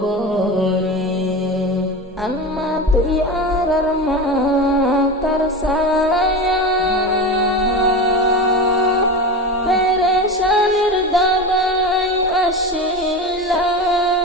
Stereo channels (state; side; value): normal; both; correlation 0.25